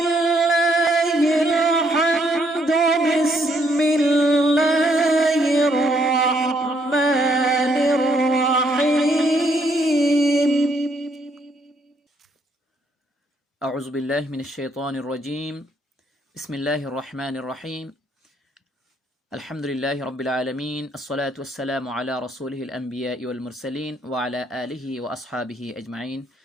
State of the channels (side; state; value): both; normal; correlation 0.71